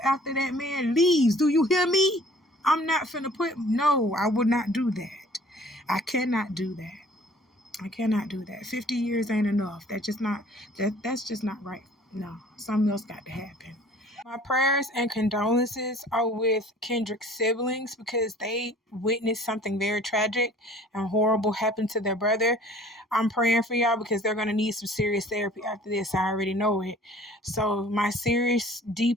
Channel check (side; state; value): both; normal; correlation 0.51